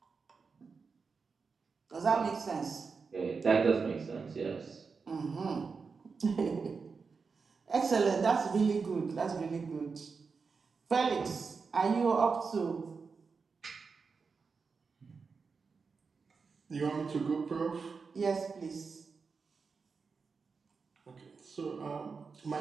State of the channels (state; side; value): quieter; left; 5.0 dB